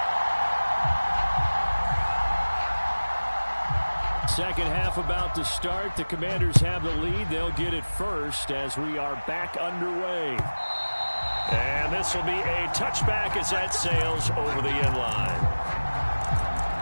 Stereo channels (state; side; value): inverted; both; correlation -1.00